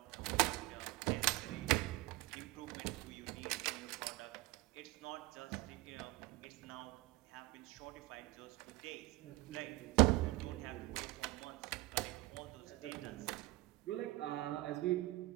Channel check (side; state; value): left; quieter; 20.4 dB